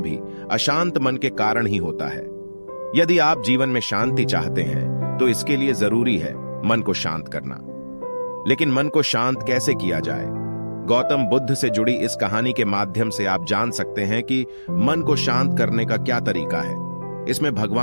भी अशांत मन के कारण ही होता है। यदि आप जीवन में शांति चाहते हैं तो इसके लिए जरूरी है मन को शांत करना। लेकिन मन को शांत कैसे किया जाए? गौतम बुद्ध से जुड़ी इस कहानी के माध्यम से आप जान सकते हैं कि मन को शांत करने का क्या तरीका है। इसमें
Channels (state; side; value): inverted; both; correlation -1.00